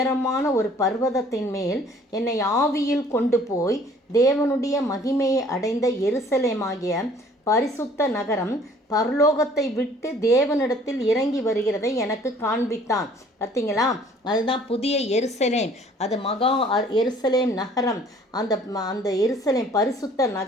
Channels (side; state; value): both; normal; correlation 0.55